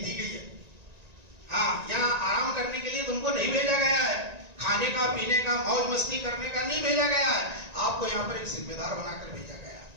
گئی ہے۔ یہاں آرام کرنے کے لیے تم کو نہیں بھیجا گیا ہے، کھانے کا پینے کا موج مستی کرنے کا نہیں بھیجا گیا ہے، آپ کو یہاں پر ایک ذمہ دار بنا کر بھیجا گیا ہے۔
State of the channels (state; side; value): late; left; 1.9 ms